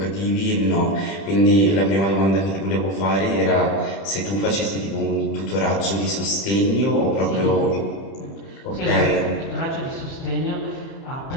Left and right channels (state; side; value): late; right; 30 ms